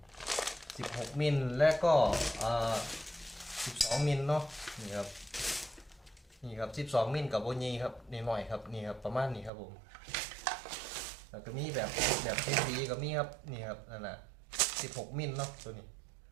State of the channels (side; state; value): left; drops out; at 9.5 s